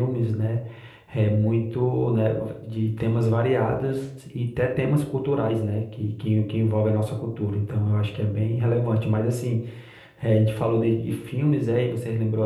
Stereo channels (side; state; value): both; identical; correlation 1.00